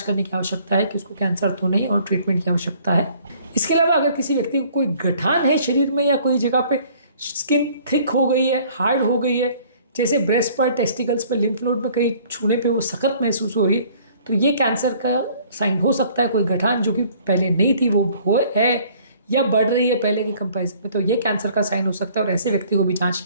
करने की आवश्यकता है कि उसको कैंसर तो नहीं और ट्रीटमेंट की आवश्यकता है। इसके अलावा अगर किसी व्यक्ति को कोई गठान है शरीर में या कोई जगह पे स्किन थिक हो गई है, हार्ड हो गई है, जैसे ब्रेस्ट पर, टेस्टिकल्स पर, लिम्फ नोड में कहीं छूने पे वो सख्त महसूस हो रही है, तो ये कैंसर का साइन हो सकता है। कोई गठान जो कि पहले नहीं थी वो हो है या बढ़ रही है पहले के कंपैरिजन में, तो ये कैंसर का साइन हो सकता है और ऐसे व्यक्ति को भी जांच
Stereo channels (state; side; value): inverted; both; correlation -0.56